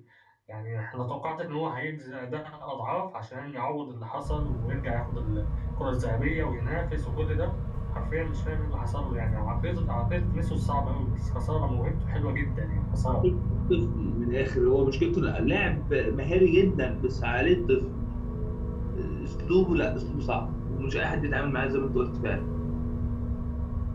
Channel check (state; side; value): identical; both; correlation 1.00